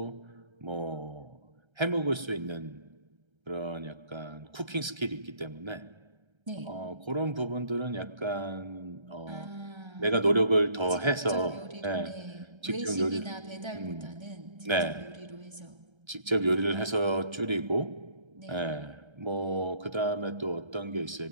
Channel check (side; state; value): left; late; 1.3 ms